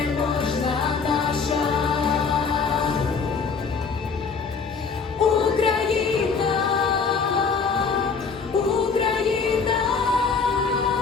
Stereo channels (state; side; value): quieter; right; 5.3 dB